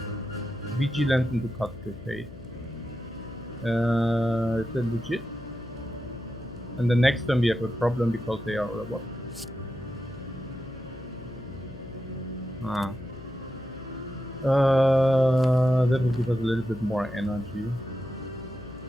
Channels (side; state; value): left; noise; hum, 16 dB below the sound